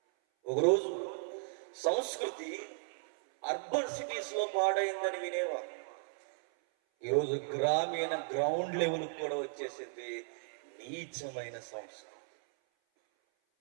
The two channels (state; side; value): silent; left; 54 dB below the other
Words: ఒకరోజు సంస్కృతి అర్బన్ సిటీస్ లో పాడైందని వినేవారు. ఈరోజు గ్రామీణ గ్రౌండ్ లెవెల్ కూడా వచ్చేసింది నీచమైన సంస్కృతి.